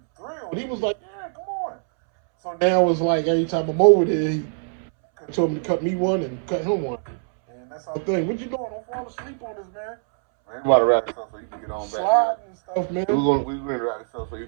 thrilled. He was like, yeah, come on. So now it's like every time I'm over there, he told me to cut me one and cut him one. And that's our thing. What you doing? Don't fall asleep on us, man. Man, we about to wrap this up so you can get on back. Sliding and stuff, man. We're going to wrap this up so you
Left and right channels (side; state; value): left; silent; 63 dB below the other